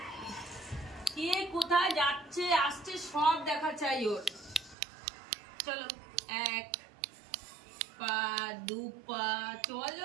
কে কোথায় যাচ্ছে আসছে সব দেখা চাই ওর। চলো 1 পা 2 পা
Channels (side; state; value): left; drops out; at 4.8 s